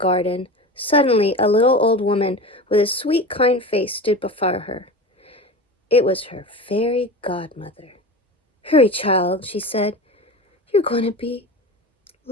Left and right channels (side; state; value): both; normal; correlation 0.30